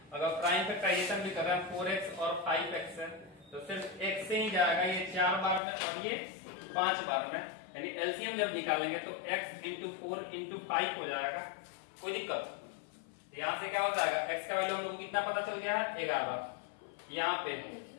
अगर प्राइम फैक्टराइजेशन भी कर रहे हैं 4x और 5x है तो सिर्फ x से ही जाएगा, ये 4 बार में और ये 5 बार में। यानी एलसीएम जब निकालेंगे तो x इंटू 4 इंटू 5 हो जाएगा। कोई दिक्कत? यहाँ से क्या हो जाएगा? x का वैल्यू हम लोग को कितना पता चल गया है? 11। यहाँ पे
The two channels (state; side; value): drops out; right; at 5.6 s